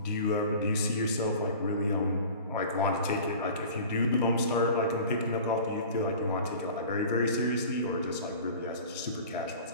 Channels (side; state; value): both; inverted; correlation -0.41